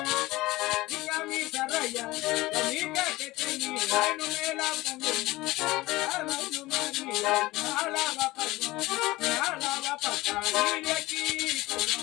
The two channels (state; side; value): quieter; right; 19.4 dB